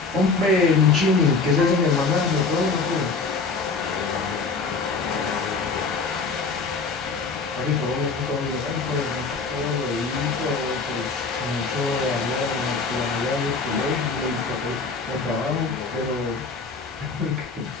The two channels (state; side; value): quieter; right; 4.3 dB